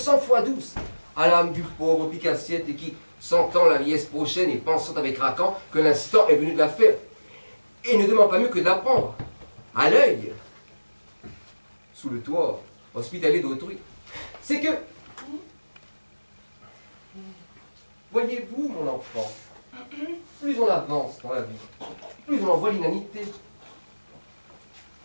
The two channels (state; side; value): inverted; both; correlation -1.00